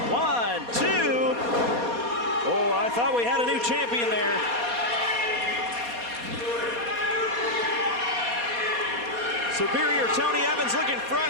wow. 1, 2. Oh, I thought we had a new champion there. Superior Tony Evans looking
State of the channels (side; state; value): left; late; 4.2 ms